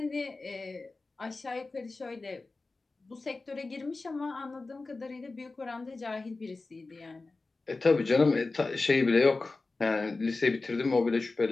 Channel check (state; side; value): quieter; right; 3.6 dB